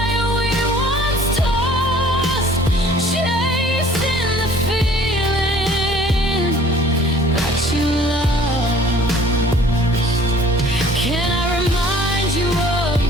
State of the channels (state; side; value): normal; both; correlation 0.53